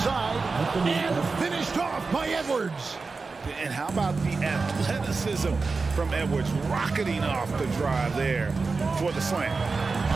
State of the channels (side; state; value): left; quieter; 4.2 dB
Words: and finished off by Edwards. And how about the athleticism from Edwards rocketing off the drive there for the slam.